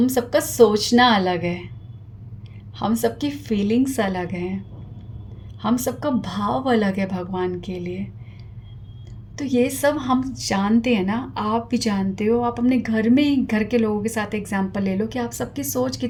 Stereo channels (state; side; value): identical; both; correlation 1.00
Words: सबका सोचना अलग है, हम सबकी फीलिंग्स अलग हैं, हम सबका भाव अलग है भगवान के लिए। तो ये सब हम जानते हैं ना, आप भी जानते हो। आप अपने घर में ही घर के लोगों के साथ एग्जांपल ले लो कि आप सबकी सोच